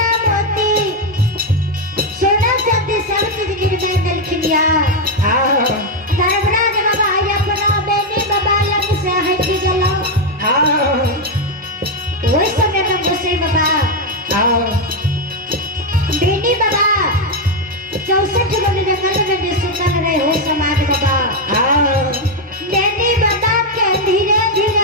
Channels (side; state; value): both; normal; correlation 0.04